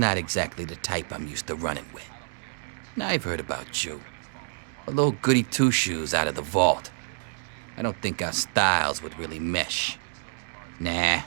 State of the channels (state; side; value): silent; left; digital silence